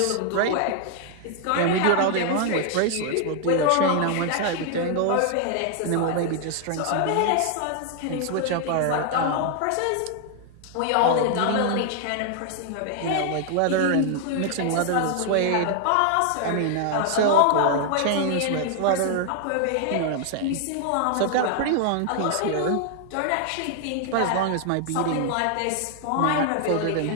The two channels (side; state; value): both; different; correlation 0.00